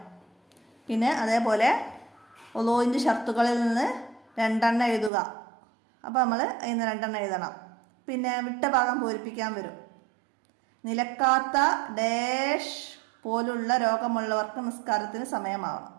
പിന്നെ അതേപോലെ ഉളൂഇൻ്റെ ഷർത്തുകളിൽ നിന്ന് 2 എണ്ണം എഴുതുക. അപ്പോൾ നമ്മൾ അതിന് 2 എണ്ണം എഴുതണം. പിന്നെ വിട്ട ഭാഗം പൂരിപ്പിക്കാൻ വരും. നിലക്കാത്ത ഡാഷ് പോലുള്ള രോഗമുള്ളവർക്ക് നിസ്കാരത്തിന് സമയമാവണം.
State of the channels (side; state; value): left; drops out; at 5.1 s